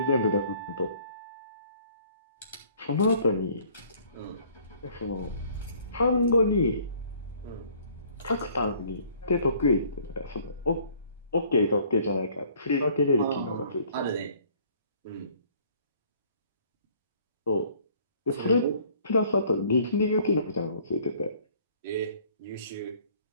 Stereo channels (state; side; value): inverted; both; correlation -0.57